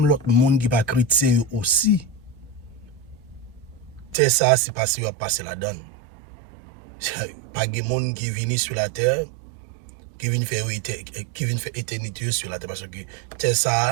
l'autre monde qui n'est pas chrétien aussi, c'est ça, c'est passé, à passer la donne. Pas de monde qui est venu sur la terre, qui vient faire éternité sur la terre, parce que c'est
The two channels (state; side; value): drops out; left; at 4.2 s